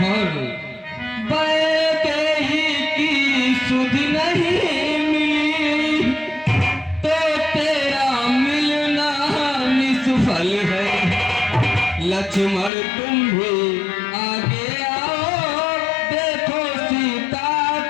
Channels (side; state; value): right; drops out; at 12.7 s